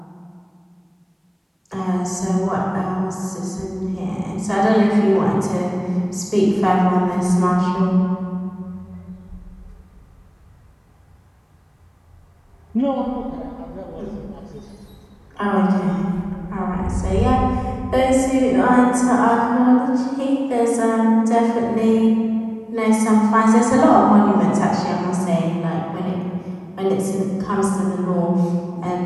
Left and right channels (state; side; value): identical; both; correlation 1.00